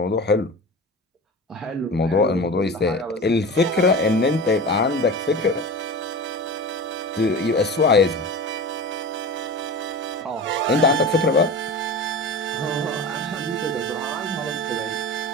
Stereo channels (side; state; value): both; normal; correlation 0.31